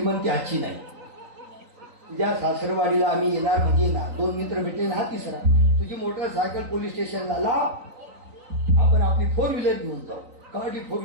हाची नाही. तुझ्या सासरवाडीला आम्ही येणार म्हणजे येणार. दोन मित्र भेटले ना, हा तिसरा. तुझी मोटरसायकल पोलीस स्टेशनला लाव. आपण आपली 4 व्हीलर घेऊन जाऊ. गाडी 4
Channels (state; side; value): late; left; 3.9 ms